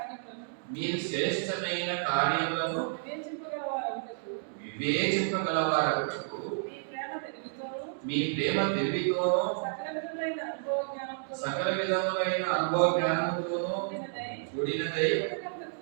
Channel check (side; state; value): left; silent; digital silence